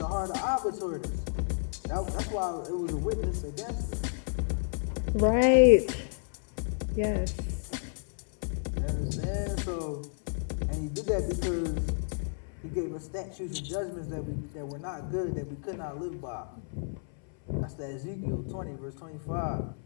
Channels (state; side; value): silent; right; 57 dB below the other